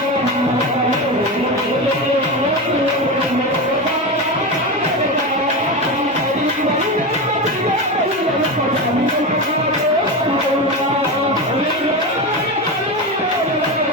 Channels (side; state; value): both; normal; correlation 0.19